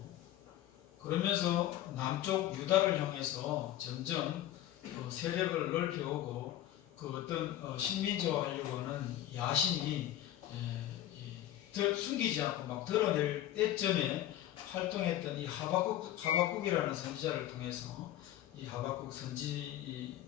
그러면서 남쪽 유다를 향해서 점점 세력을 넓혀오고 그 어떤 식민지화하려고 하는 야심이 숨기지 않고 막 드러낼 때쯤에 활동했던 이 하박국이라는 선지자를 통해서 이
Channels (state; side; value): quieter; right; 12.9 dB